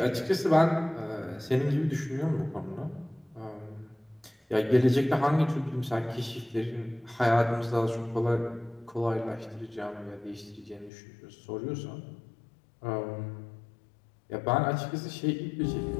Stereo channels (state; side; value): drops out; right; at 10.9 s